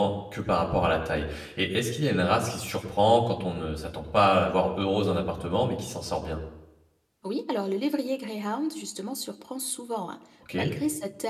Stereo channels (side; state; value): both; identical; correlation 1.00